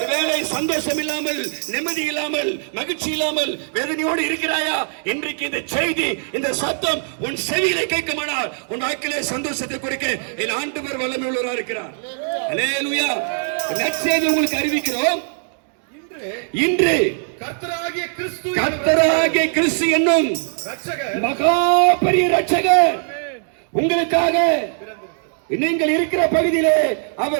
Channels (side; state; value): left; silent; digital silence